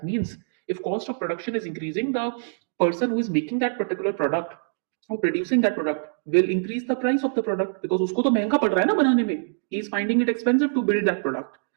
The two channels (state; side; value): silent; left; digital silence